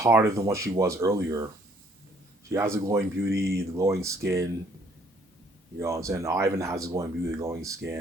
than what she was earlier. She has the glowing beauty, the glowing skin. You know what I'm saying? Ivan has the glowing beauty, the glowing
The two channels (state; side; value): normal; both; correlation 0.63